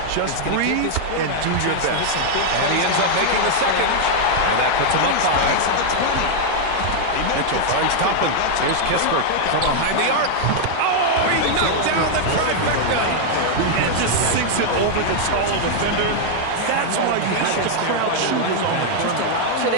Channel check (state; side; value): different; both; correlation 0.00